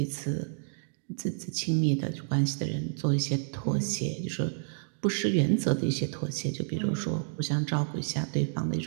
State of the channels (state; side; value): silent; left; digital silence